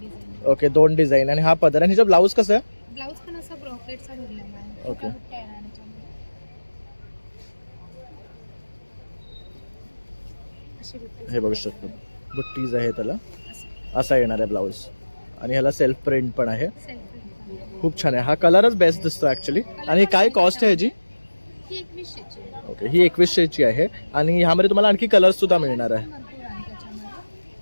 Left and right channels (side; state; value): both; inverted; correlation -1.00